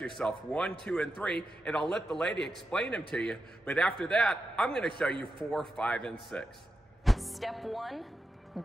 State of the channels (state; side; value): normal; both; correlation 0.88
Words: 1, 2, and 3, and I'll let the lady explain them to you. But after that, I'm gonna show you 4, 5, and 6. Step 1,